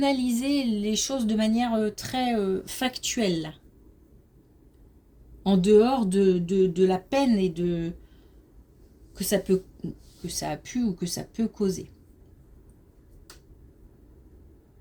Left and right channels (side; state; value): both; identical; correlation 1.00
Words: les choses de manière très factuelle, en dehors de la peine et de que ça a pu ou que ça peut causer.